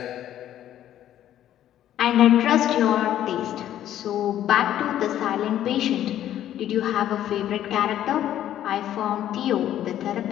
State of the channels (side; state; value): right; quieter; 11.7 dB